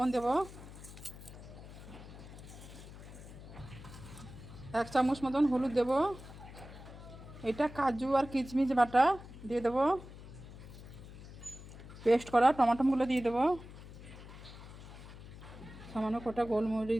দেবো, 1 চামচ মতন হলুদ দেবো। এটা কাজু আর কিশমিশ বাটা দিয়ে দেবো। পেস্ট করা টমাটোগুলো দিয়ে দেবো। সামান্য কটা গোলমরিচ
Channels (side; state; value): left; noise; hum, 15 dB below the sound